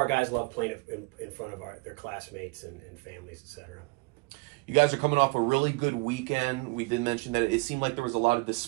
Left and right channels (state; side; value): quieter; left; 27.5 dB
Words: guys love playing in front of their classmates and families, etc. You guys are coming off a really good weekend. We did mention that it seemed like there was a lot of